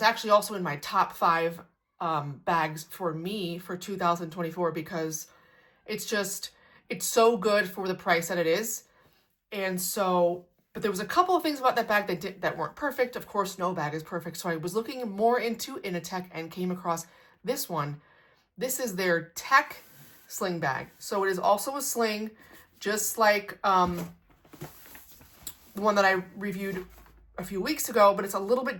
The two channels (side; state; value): both; identical; correlation 1.00